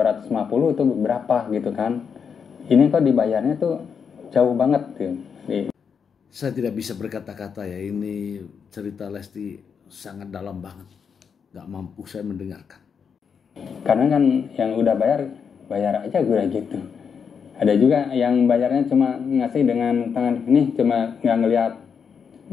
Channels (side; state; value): right; quieter; 6.6 dB